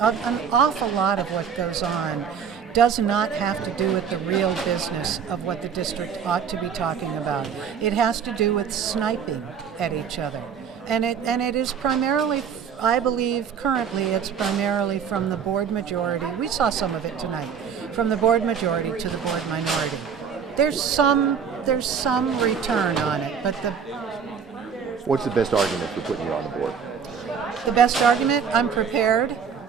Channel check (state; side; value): quieter; left; 7.0 dB